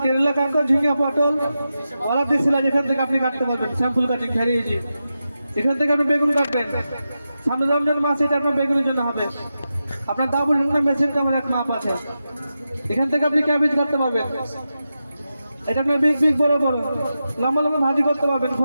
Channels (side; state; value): both; inverted; correlation -0.91